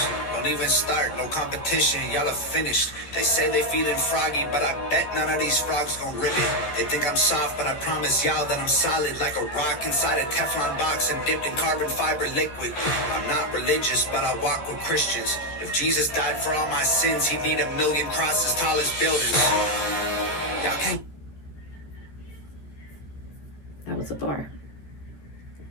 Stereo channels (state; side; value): late; right; 14 ms